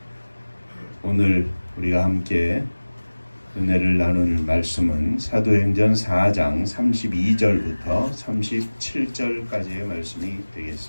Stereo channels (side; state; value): both; inverted; correlation -1.00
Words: 오늘 우리가 함께 은혜를 나눌 말씀은 사도행전 4장 32절부터 37절까지의 말씀이